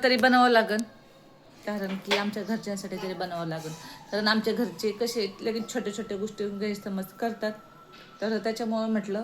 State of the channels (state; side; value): identical; both; correlation 1.00